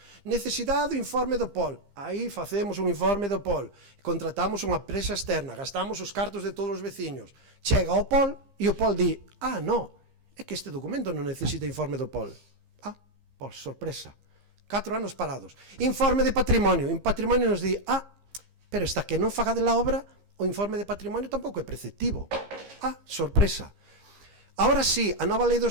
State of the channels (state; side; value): late; left; 15 ms